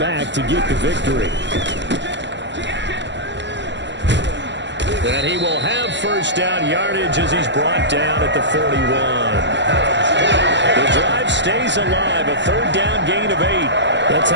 to get the victory. And he will have first down yardage as he's brought down at the 41. The drive stays alive, a 3rd down gain of 8. That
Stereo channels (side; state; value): left; late; 0.52 ms